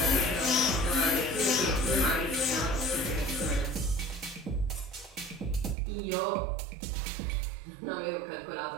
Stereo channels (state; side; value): drops out; left; at 5.8 s